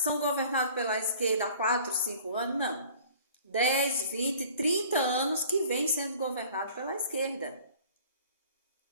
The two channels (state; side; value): inverted; both; correlation -0.49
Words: São governados pela esquerda há 4, 5 anos? Não. 10, 20, 30 anos que vem sendo governado pela esquerda.